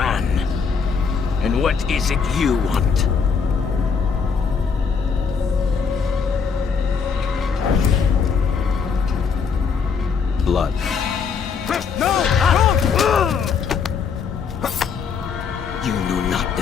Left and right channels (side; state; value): right; quieter; 5.9 dB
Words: And what is it you want? Blood. You know not